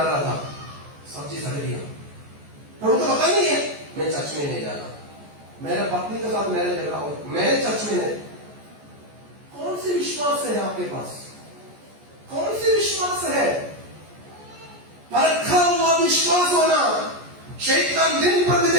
रहा था, सब्जी सड़ गया, प्रभु को पता नहीं है, मैं चर्च में नहीं जाना। मेरे पत्नी के साथ मेरे झगड़ा हो, मैं चर्च में नहीं। कौन सी विश्वास है आपके पास, कौन सी विश्वास है? परखा हुआ विश्वास होना। शैतान दिन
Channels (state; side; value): late; left; 14 ms